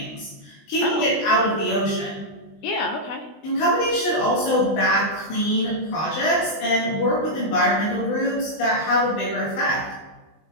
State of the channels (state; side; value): late; right; 20 ms